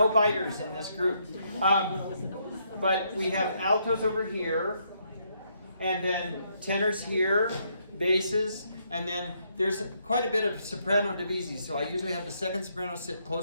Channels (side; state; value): both; inverted; correlation -0.74